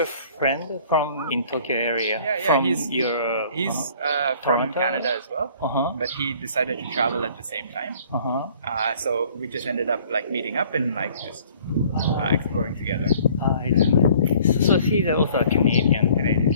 friend from in Tokyo area? From he's from Toronto? Canada as well, but he decided to travel at the same time. So we just ended up like meeting up and like just exploring together. So he's also a Canadian.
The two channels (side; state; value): both; inverted; correlation -0.54